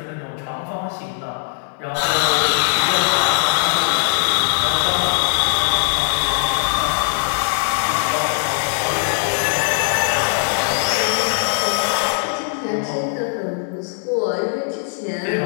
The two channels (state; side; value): silent; right; digital silence